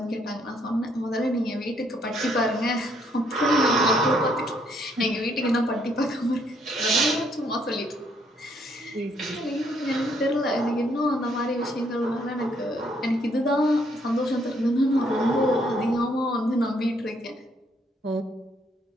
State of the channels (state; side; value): normal; both; correlation 0.70